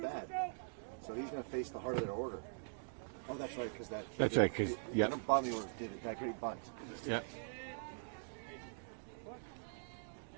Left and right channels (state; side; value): silent; left; digital silence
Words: So he's going to face the heart of their order. Oh, that's right, because that kid That's did right, the number bottom of the order did that great bunt. Yeah.